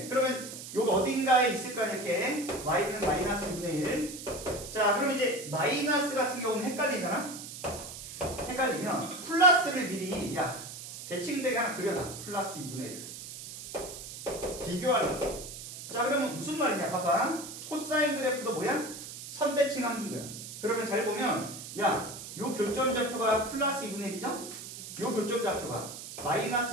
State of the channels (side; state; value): right; noise; hiss, 11 dB below the sound